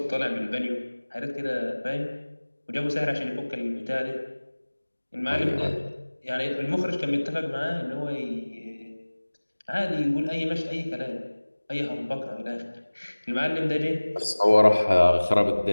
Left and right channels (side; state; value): both; inverted; correlation -1.00